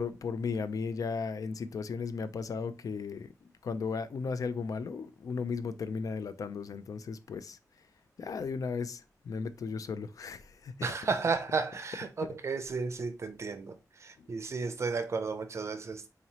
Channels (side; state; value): both; normal; correlation 0.70